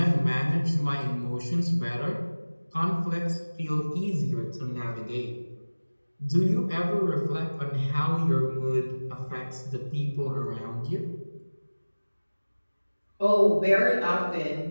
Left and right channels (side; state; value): both; inverted; correlation -1.00